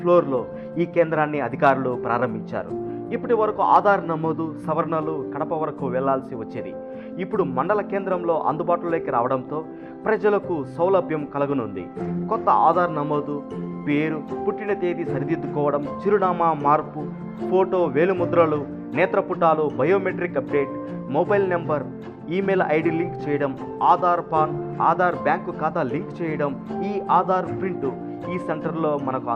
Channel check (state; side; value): identical; both; correlation 1.00